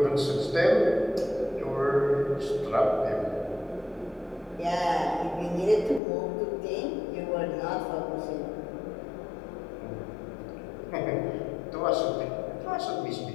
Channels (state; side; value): drops out; right; at 6.0 s